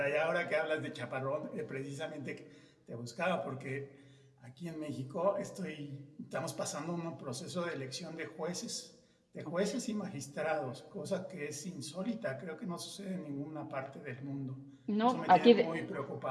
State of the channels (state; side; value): identical; both; correlation 1.00